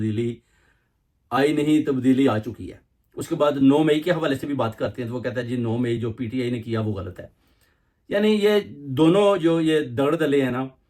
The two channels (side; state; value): both; identical; correlation 1.00